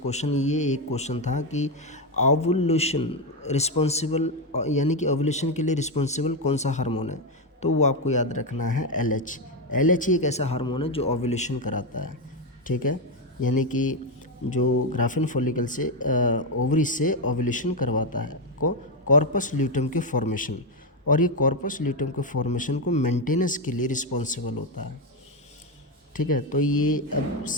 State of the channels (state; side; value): normal; both; correlation 0.07